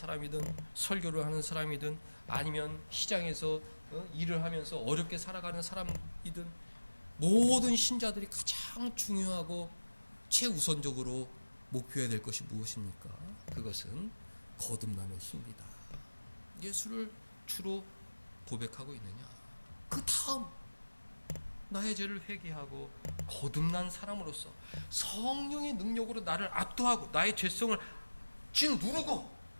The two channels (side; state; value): both; inverted; correlation -1.00